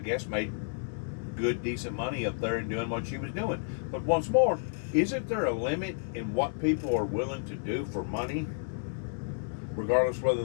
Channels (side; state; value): right; silent; digital silence